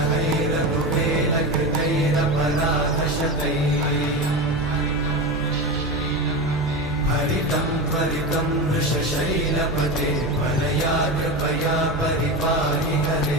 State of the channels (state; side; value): noise; right; hum, 12 dB below the sound